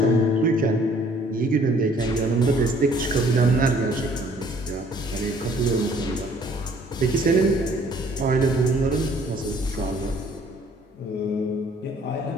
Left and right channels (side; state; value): both; normal; correlation 0.58